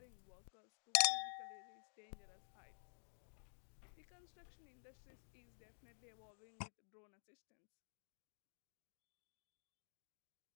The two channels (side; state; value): right; silent; digital silence